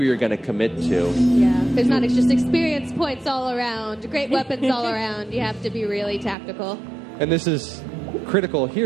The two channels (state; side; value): drops out; left; at 6.4 s